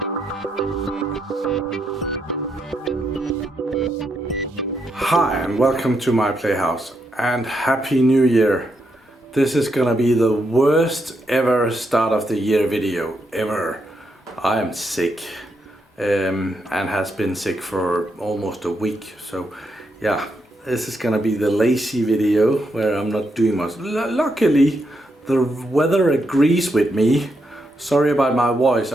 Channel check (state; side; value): normal; both; correlation 0.80